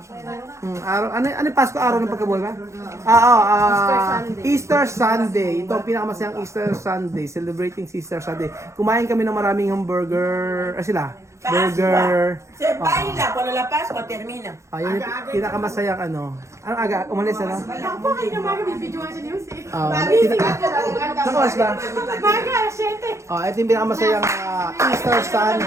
Araw, ano yung Pasko? Araw ng pagkabuhay ba? Easter Sunday. Ito ang pinakamasayang Easter Sunday. Celebrating Easter Sunday. Kumain kami ng maraming hamburger. Sila? Burger. Baila, cuando la Pascua termina. Ayun yung pinakamasayang ano. Anong aga? Umalis ano? Ako kayo na mga bibidyoan sa news eh. Nakuwas ba? Mga asyete. Ito yung pinakamasayang Easter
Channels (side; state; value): left; late; 0.14 ms